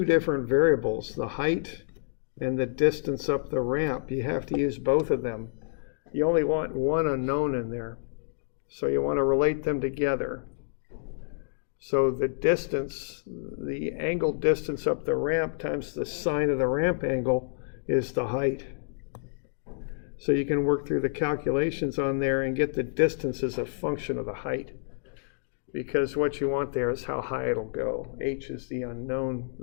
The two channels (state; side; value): silent; right; digital silence